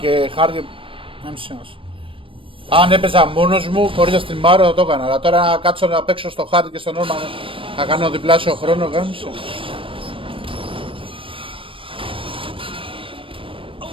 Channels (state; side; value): late; left; 0.25 ms